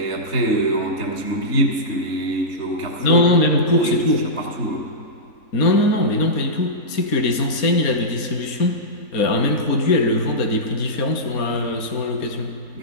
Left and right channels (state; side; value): late; right; 4.2 ms